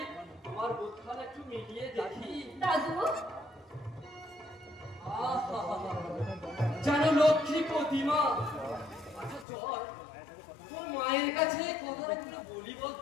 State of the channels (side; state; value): right; drops out; at 9.5 s